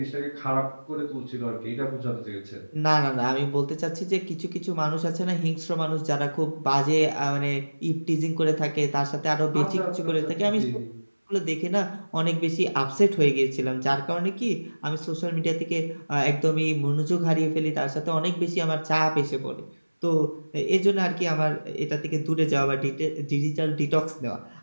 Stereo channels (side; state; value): both; inverted; correlation -1.00